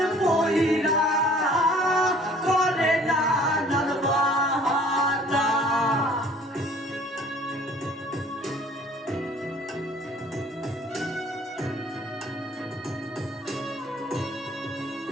পয়রা করে নানান বাহানা।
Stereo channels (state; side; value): normal; both; correlation 0.53